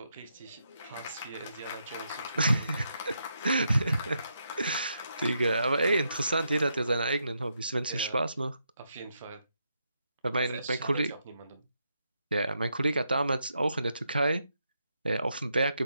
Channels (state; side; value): inverted; both; correlation -0.81